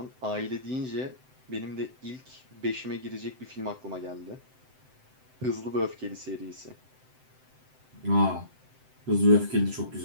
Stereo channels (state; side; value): late; left; 7.8 ms